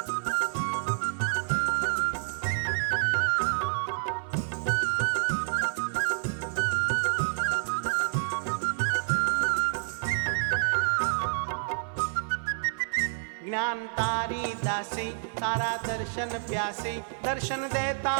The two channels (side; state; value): left; silent; 56 dB below the other